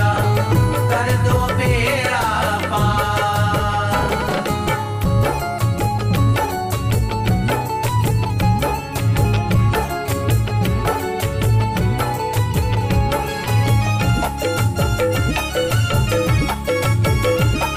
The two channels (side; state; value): both; identical; correlation 1.00